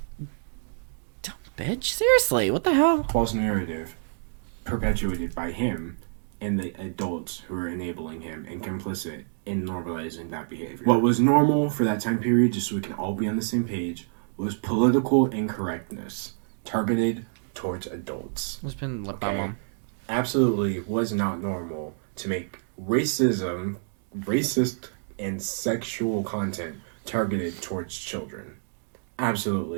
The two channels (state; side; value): silent; left; digital silence